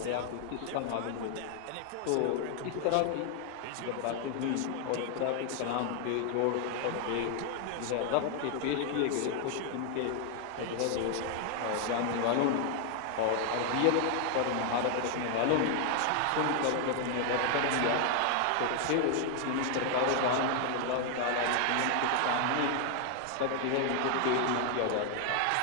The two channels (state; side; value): different; both; correlation 0.00